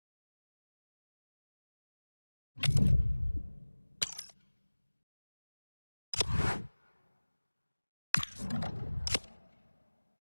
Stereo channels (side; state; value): both; inverted; correlation -1.00